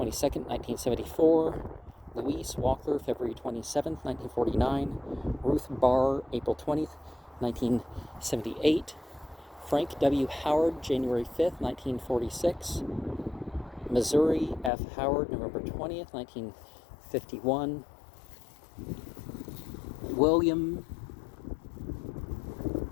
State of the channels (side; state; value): right; drops out; at 14.7 s